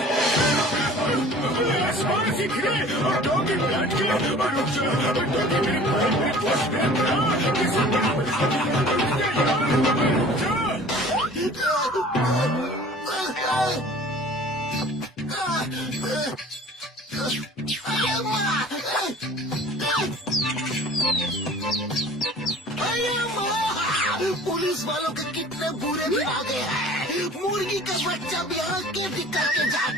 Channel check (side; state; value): both; normal; correlation 0.46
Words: पुलिस वालों के कितने बुरे दिन आ गए हैं। मुर्गी का बच्चा भी आके दिक्कत के